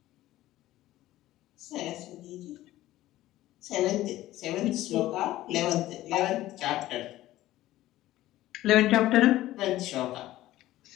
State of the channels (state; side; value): quieter; right; 15.4 dB